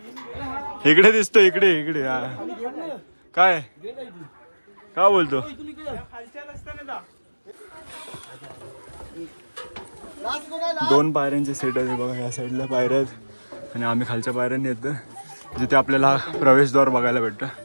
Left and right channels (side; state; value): both; inverted; correlation -1.00